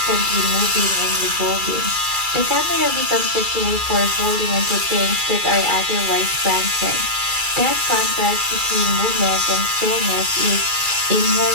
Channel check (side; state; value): left; late; 2.3 ms